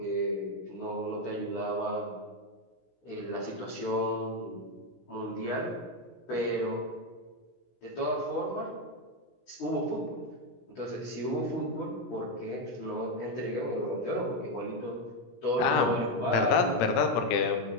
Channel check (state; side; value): late; right; 17 ms